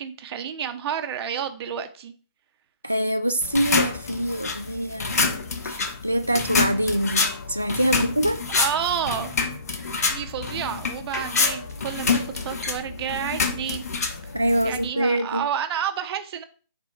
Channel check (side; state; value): both; inverted; correlation -0.47